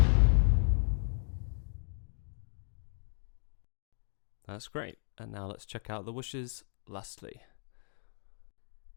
That's great. And now let's check out the whooshes lastly.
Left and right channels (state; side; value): silent; right; digital silence